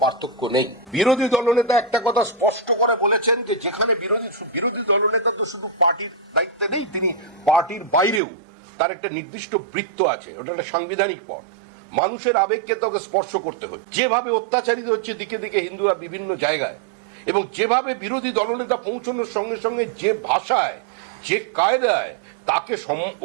পার্থক্য নেই। বিরোধী দলনেতা একটা কথা স্পষ্ট করে বলেছেন যে যেখানে বিরোধী দলনেতা তো শুধু পার্টির দায়িত্বে নেই, তিনি পার্টির বাইরেও তার একটা নির্দিষ্ট বৃত্ত আছে, ওটা একটা সাংবিধানিক পদ। মানুষের আবেগকে তোকে স্পর্শ করতে হয়। যেভাবে অত্যাচারিত হচ্ছে দিকে দিকে হিন্দুরা বিভিন্ন জায়গায়, এবং যেভাবে বিরোধী দলনেতা পৌঁছানোর সঙ্গে সঙ্গে যে ভাষায় যে কায়দায় তাকে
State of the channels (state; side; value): drops out; left; at 8.2 s